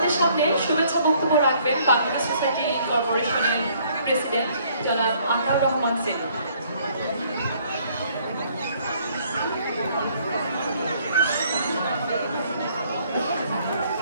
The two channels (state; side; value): inverted; both; correlation -0.63